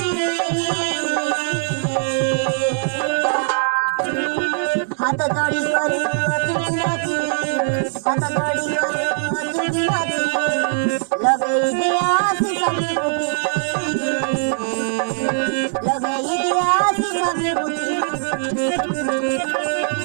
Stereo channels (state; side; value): silent; left; digital silence